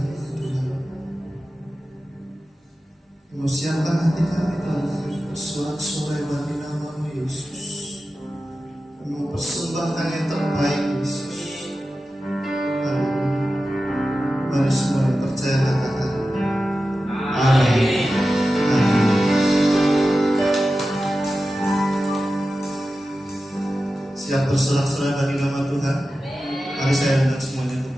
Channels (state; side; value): normal; both; correlation 0.93